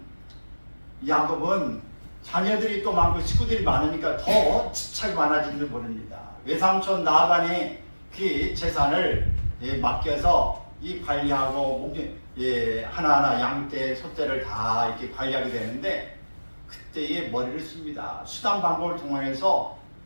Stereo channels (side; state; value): both; inverted; correlation -1.00